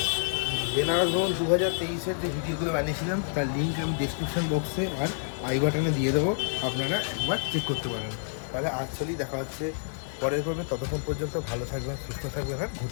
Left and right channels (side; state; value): right; silent; digital silence